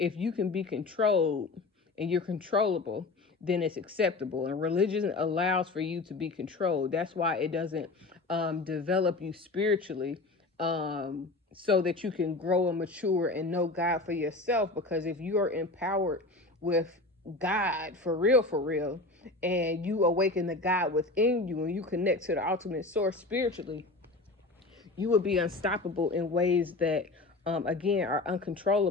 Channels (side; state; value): right; quieter; 3.2 dB